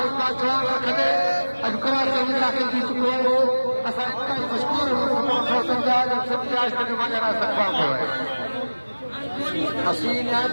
जान रखंदे अॼु कराची में दाख़िल थी चुको आहे। असां इंतहाई मशहूर आहियूं सिंध जा जन सिंध जे आशिक़ जो मौजूदा इस्तक़बाल कयो आहे। असीं निहायत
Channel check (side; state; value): both; inverted; correlation -1.00